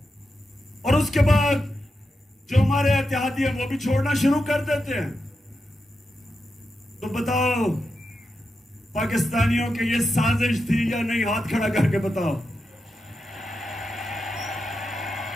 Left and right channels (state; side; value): normal; both; correlation 0.88